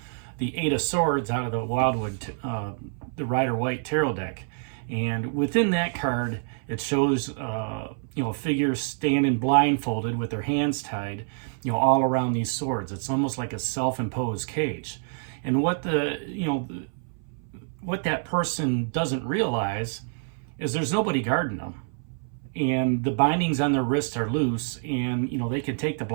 Eight of Swords out of the Wildwood, the Rider-Waite Tarot deck. And within that card, it shows a figure standing blindfolded with their hands tied, all around these swords. It's almost like a self-imposed cage. And what what that person doesn't realize is there's nobody guarding them, and the bindings on their wrists are loose, and they can take the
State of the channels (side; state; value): left; silent; 60 dB below the other